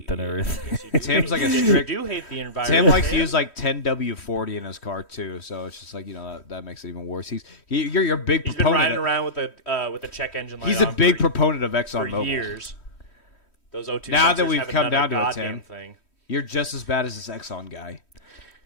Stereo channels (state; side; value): late; right; 3.1 ms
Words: and everything. Tim's like a You strict. do hate the environment. Tim likes to use like 10W40 in his car too, so it's just like that makes it even worse. You're a big He's been proponent. riding around with a check engine light. He's a on big for, proponent of for ExxonMobil. years. Those O2 Now that sensors we've haven't come done down a to it, goddamn Tim. thing. You're just as bad as this Exxon guy.